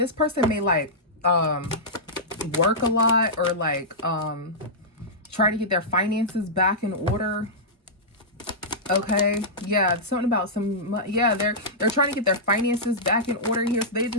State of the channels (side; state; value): both; normal; correlation -0.13